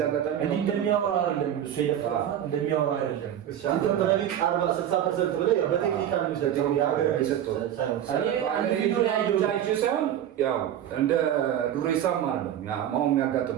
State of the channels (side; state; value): left; quieter; 10.6 dB